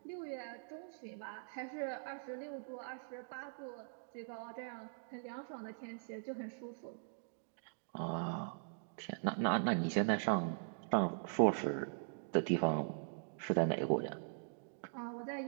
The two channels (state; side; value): silent; left; digital silence